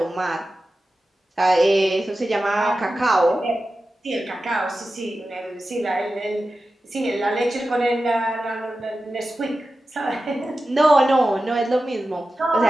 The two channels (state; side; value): normal; both; correlation 0.93